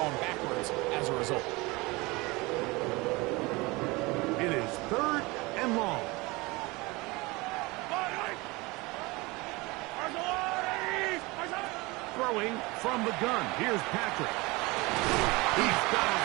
backwards as a result. It is third and long. Throwing from the gun. Here's Patrick. He's got his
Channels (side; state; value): left; quieter; 23.7 dB